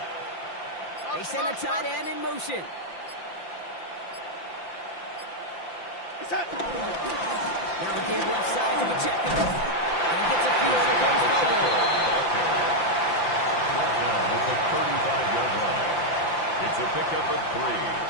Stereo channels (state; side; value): late; right; 5.8 ms